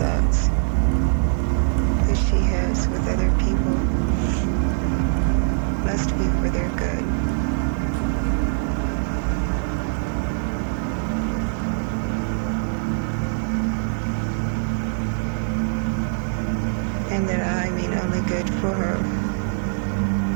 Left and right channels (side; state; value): left; silent; digital silence